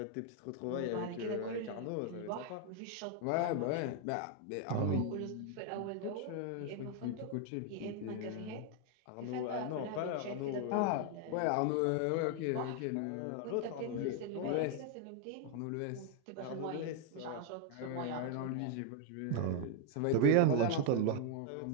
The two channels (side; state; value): both; different; correlation 0.01